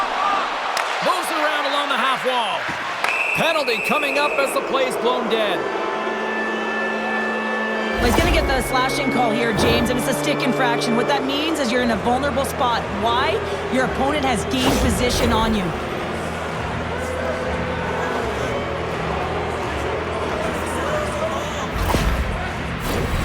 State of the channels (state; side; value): identical; both; correlation 1.00